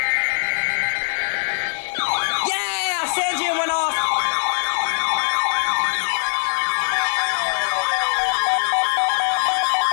Yeah! Sanjian went off!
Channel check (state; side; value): silent; right; 57 dB below the other